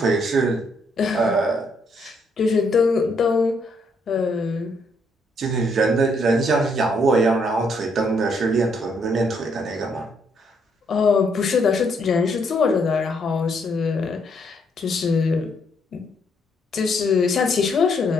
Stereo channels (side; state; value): both; normal; correlation 0.72